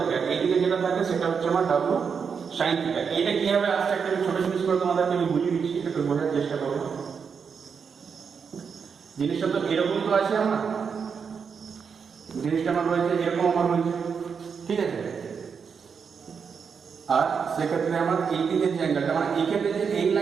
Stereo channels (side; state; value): left; quieter; 6.2 dB